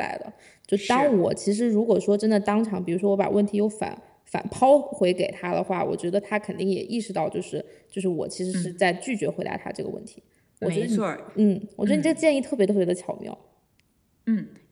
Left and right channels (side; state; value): both; identical; correlation 1.00